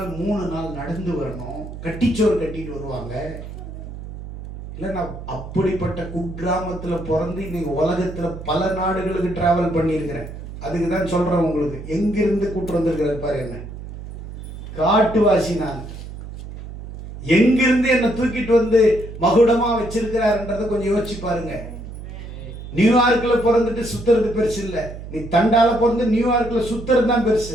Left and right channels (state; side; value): noise; right; hum, 11 dB below the sound